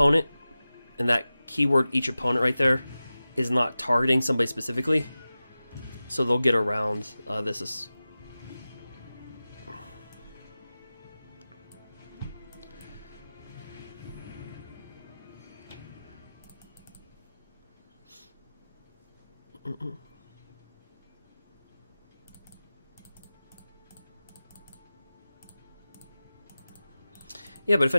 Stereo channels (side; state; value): both; inverted; correlation -0.96